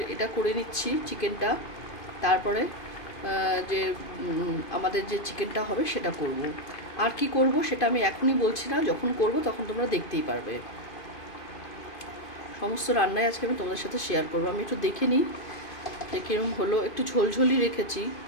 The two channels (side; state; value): right; late; 2.5 ms